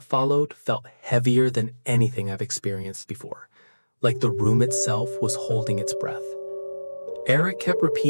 followed felt heavier than anything I've experienced before, like the room itself was holding its breath. Eric kept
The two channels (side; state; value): both; inverted; correlation -1.00